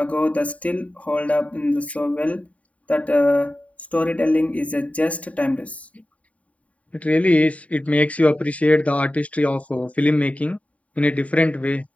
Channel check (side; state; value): right; late; 0.067 ms